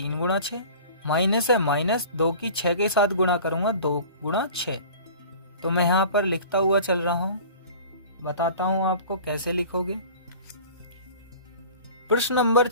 × 6, माइनस है माइनस, 2 की 6 के साथ गुणा करूंगा 2 × 6। तो मैं यहाँ पर लिखता हुआ चल रहा हूँ, बताता हूँ आपको कैसे लिखोगे। प्रश्न नंबर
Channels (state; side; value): inverted; both; correlation -0.42